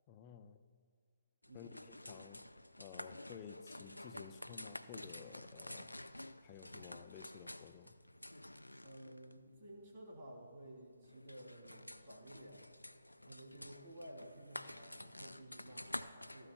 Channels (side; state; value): both; inverted; correlation -0.86